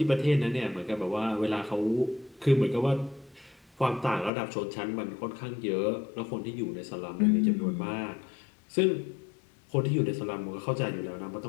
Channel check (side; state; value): right; drops out; at 4.3 s